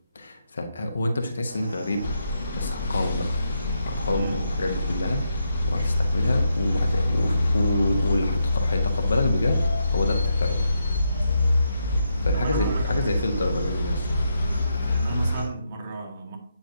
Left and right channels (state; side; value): inverted; both; correlation -0.81